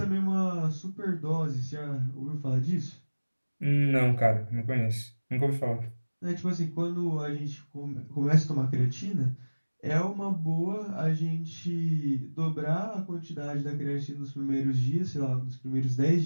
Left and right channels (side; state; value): both; inverted; correlation -1.00